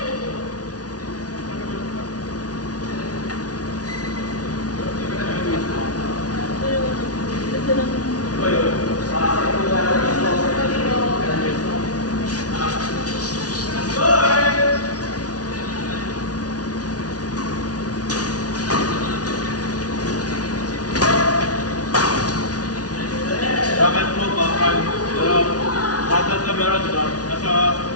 Dapat po bakal. Bakal na meron dito. Nasa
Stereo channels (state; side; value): late; right; 0.68 ms